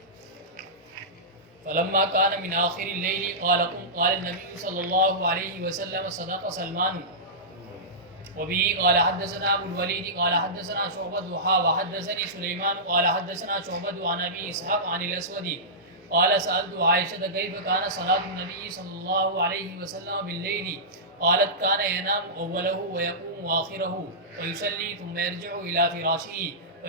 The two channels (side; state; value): both; normal; correlation -0.17